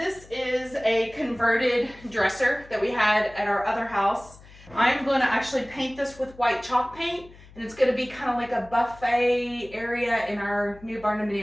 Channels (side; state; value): left; noise; hum, 22 dB below the sound